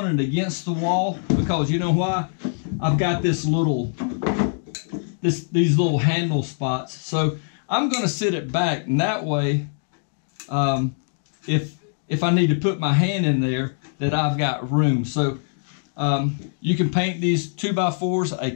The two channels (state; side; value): silent; right; digital silence